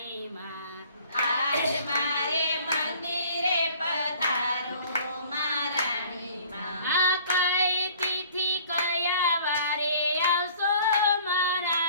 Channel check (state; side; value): inverted; both; correlation -0.52